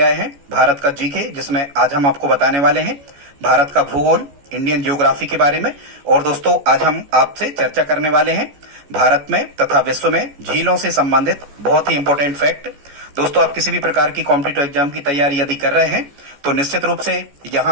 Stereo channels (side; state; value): left; late; 14 ms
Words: हैं भारत का जीके, जिसमें आज हम आपको बताने वाले हैं भारत का भूगोल, इंडियन ज्योग्राफी के बारे में। और दोस्तों, आज हम आपसे चर्चा करने वाले हैं भारत में तथा विश्व में झीलों से संबंधित बहुत ही इंपॉर्टेंट फैक्ट। दोस्तों, आप किसी भी प्रकार की कॉम्पिटिटिव एग्जाम की तैयारी यदि कर रहे हैं तो निश्चित रूप से